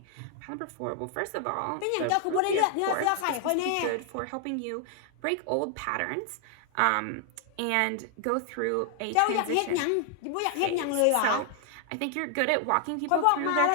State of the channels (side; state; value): both; different; correlation 0.00